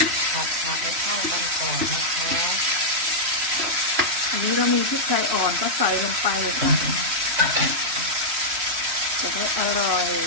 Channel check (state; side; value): late; left; 3.0 ms